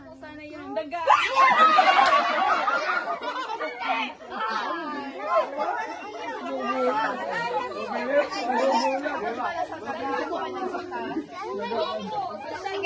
po sana yung daga.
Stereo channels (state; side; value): identical; both; correlation 1.00